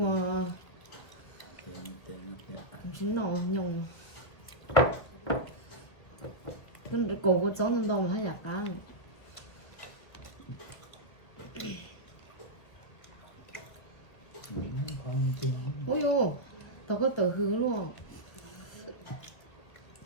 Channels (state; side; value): late; right; 1.6 ms